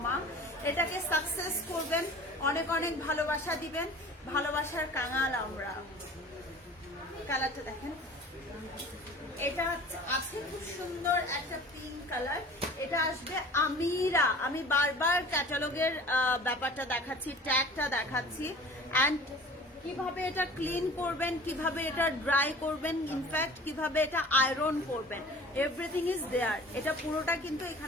এটাকে সাকসেস করবেন, অনেক অনেক ভালোবাসা দিবেন, ভালোবাসার কাঙাল আমরা। কালারটা দেখেন, এটা আছে খুব সুন্দর একটা পিঙ্ক কালার। এটা আসবে আমিরা। আমি বারবার ক্যাটালগের ব্যাপারটা দেখাচ্ছি, ট্যাগটা দেখাচ্ছি, এন্ড কিভাবে এটা ক্লিন করবেন, কিভাবে এটা ড্রাই করবেন, ইনফ্যাক্ট কিভাবে এটা আয়রন করবেন, এভরিথিং ইজ দেয়ার। এটা পুরোটা কিন্তু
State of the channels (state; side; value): normal; both; correlation 0.44